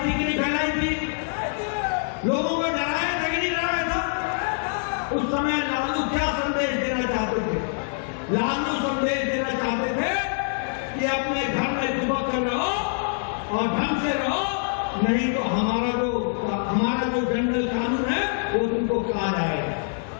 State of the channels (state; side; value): silent; right; digital silence